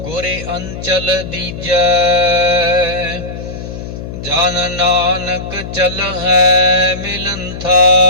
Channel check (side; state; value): left; noise; hum, 9 dB below the sound